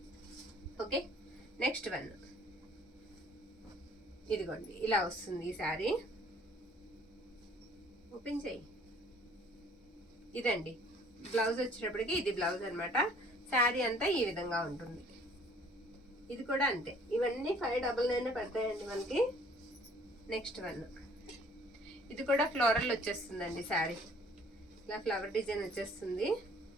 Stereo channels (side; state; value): both; normal; correlation 0.56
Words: ఓకే, నెక్స్ట్ వన్, ఇదిగోండి ఇలా వస్తుంది ఈ శారీ. ఓపెన్ చేయి. ఇదండి బ్లౌజ్ వచ్చేటప్పటికి ఇది బ్లౌజ్ అనమాట. శారీ అంతా ఈ విధంగా ఉంటుంది. ఇది కూడా అంతే. ఇవన్నీ 599 పడతాయండి మనకి. నెక్స్ట్ వన్, ఇది కూడా ఫ్లోరల్ వచ్చేస్తుందండి. శారీ ఇలా ఫ్లవర్ డిజైన్ వచ్చేస్తుంది.